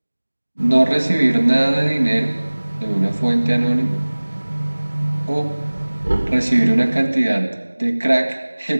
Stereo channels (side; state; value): both; inverted; correlation -1.00